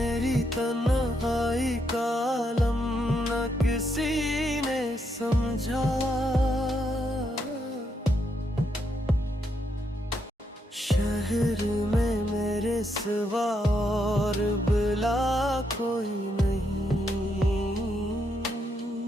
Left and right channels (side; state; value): both; normal; correlation 0.78